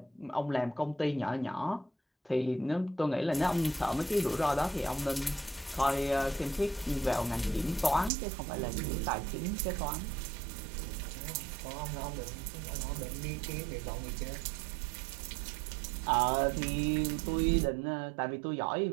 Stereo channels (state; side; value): drops out; left; at 8.1 s